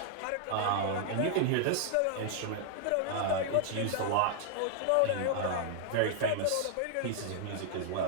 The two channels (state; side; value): different; both; correlation 0.00